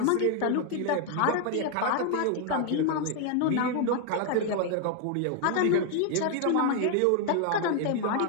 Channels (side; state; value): both; different; correlation 0.00